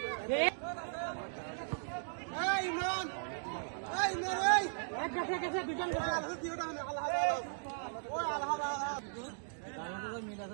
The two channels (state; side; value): silent; left; digital silence